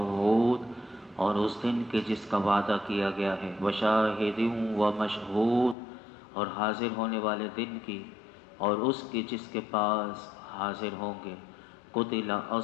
اور اس دن کے جس کا وعدہ کیا گیا ہے، وشاہد ومشہود، اور حاضر ہونے والے دن کی، اور اس کی جس کے پاس حاضر ہوں گے۔ قتل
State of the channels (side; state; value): right; drops out; at 5.8 s